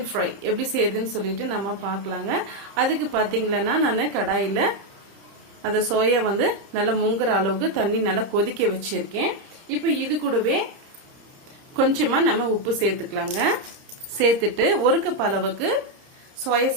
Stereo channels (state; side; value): late; left; 30 ms